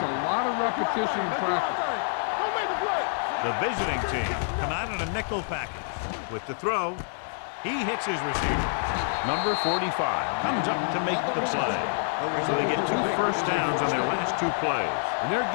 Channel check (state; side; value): silent; right; digital silence